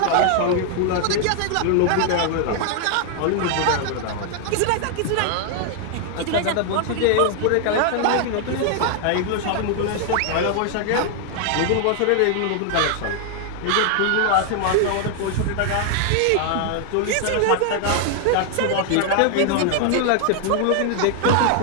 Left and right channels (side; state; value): both; different; correlation 0.00